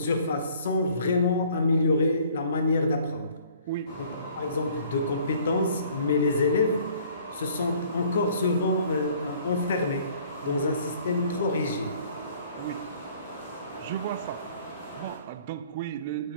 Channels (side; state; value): both; inverted; correlation -0.56